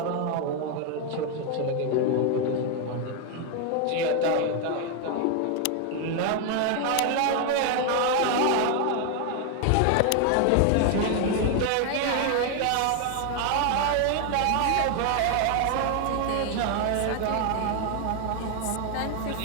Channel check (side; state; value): both; different; correlation 0.01